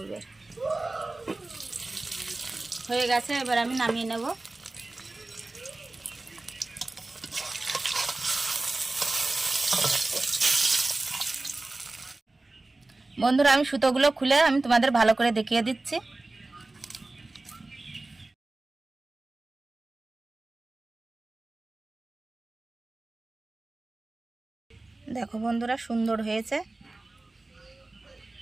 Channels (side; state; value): left; quieter; 3.0 dB